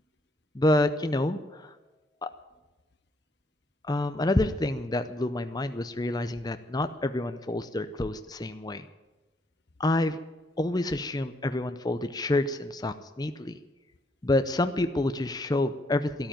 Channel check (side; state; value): both; normal; correlation 0.71